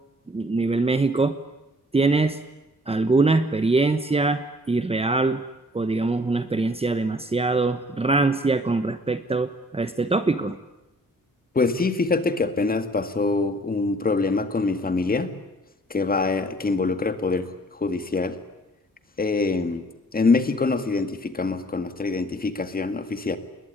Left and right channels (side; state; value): both; normal; correlation 0.57